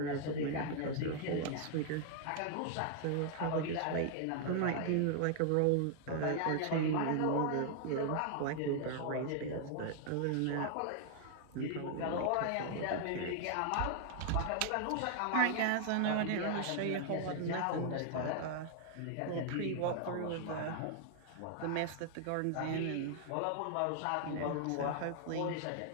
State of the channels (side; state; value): both; different; correlation 0.00